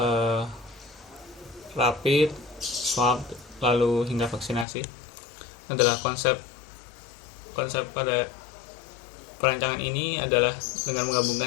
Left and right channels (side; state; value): right; drops out; at 4.7 s